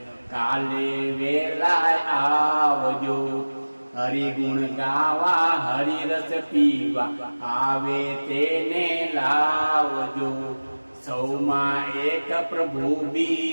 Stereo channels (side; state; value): both; inverted; correlation -1.00